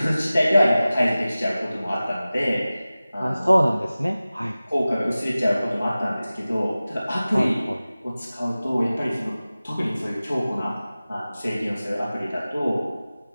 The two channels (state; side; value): inverted; both; correlation -0.97